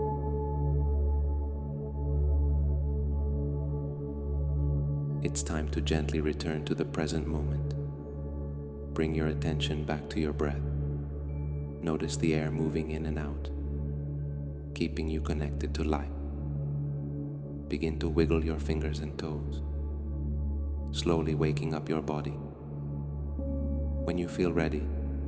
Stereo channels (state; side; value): identical; both; correlation 1.00